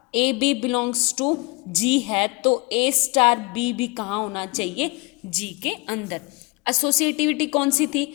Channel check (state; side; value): quieter; right; 26.9 dB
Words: ए बी बिलोंग्स टू जी है तो ए स्टार बी भी कहाँ होना चाहिए, जी के अंदर। एसोसिएटिविटी कौन सी